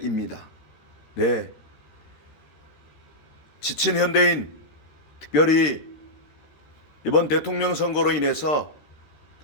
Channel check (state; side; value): late; right; 13 ms